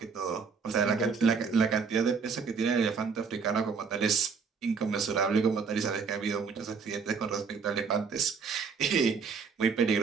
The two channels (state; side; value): quieter; left; 5.5 dB